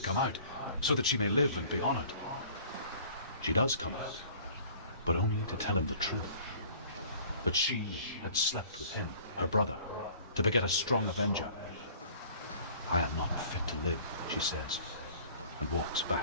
out so that she may live and be honored. She does come out, but only to tell him the truth. That she had slept with him, her brother, to beget a strong avenger. I am not fit to live, she says, and walks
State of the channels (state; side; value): inverted; both; correlation -0.50